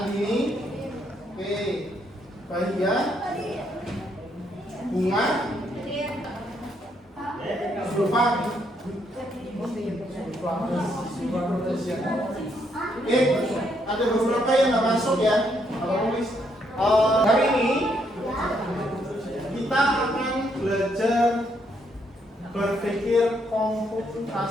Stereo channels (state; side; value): normal; both; correlation 0.74